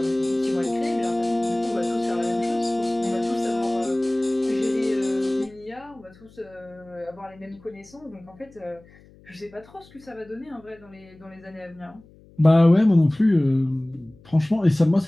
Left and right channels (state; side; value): noise; left; hum, 26 dB below the sound